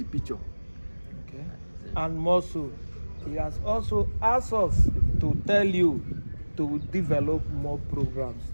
picture. Okay. And more so, he has also asked us to tell you to develop more programs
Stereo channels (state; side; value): inverted; both; correlation -1.00